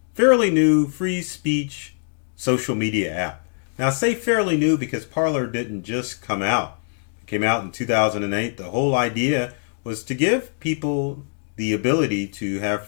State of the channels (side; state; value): right; silent; digital silence